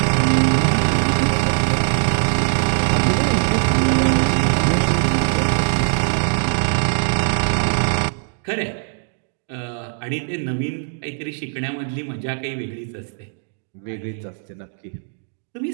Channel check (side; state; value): left; silent; digital silence